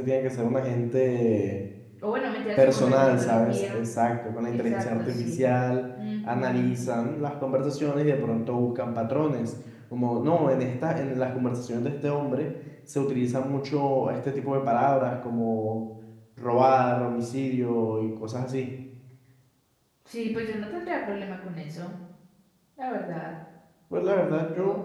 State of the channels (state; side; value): identical; both; correlation 1.00